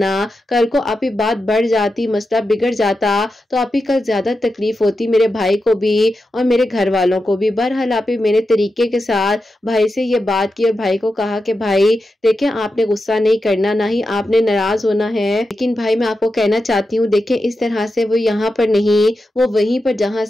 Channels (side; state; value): both; normal; correlation 0.89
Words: कल को आप ही बात बढ़ जाती, मसला बिगड़ जाता तो आप ही कल ज्यादा तकलीफ होती मेरे भाई को भी और मेरे घर वालों को भी। बहरहाल आप ही मेरे तरीके के साथ भाई से ये बात की और भाई को कहा कि भाई देखें आपने गुस्सा नहीं करना, ना ही आपने नाराज होना है। लेकिन भाई मैं आपको कहना चाहती हूँ, देखिए इस तरह से वो यहाँ पर नहीं, वो वहीं पर जहाँ